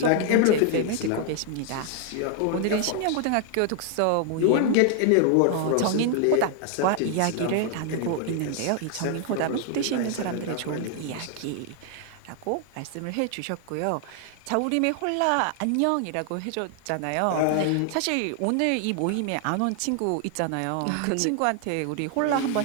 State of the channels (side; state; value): both; different; correlation 0.00